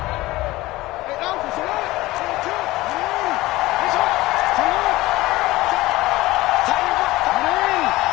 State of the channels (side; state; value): right; quieter; 18.6 dB